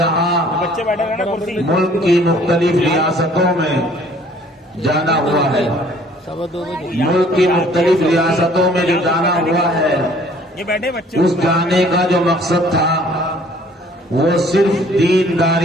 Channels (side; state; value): both; normal; correlation 0.56